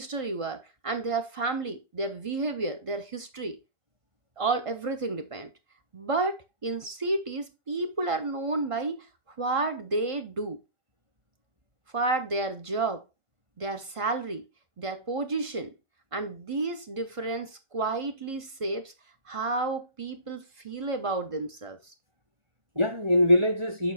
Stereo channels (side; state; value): left; late; 1.5 ms